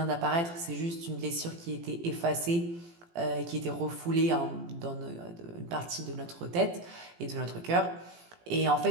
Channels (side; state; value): left; late; 18 ms